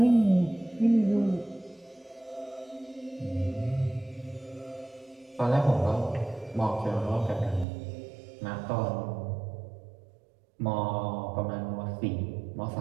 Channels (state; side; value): drops out; left; at 7.7 s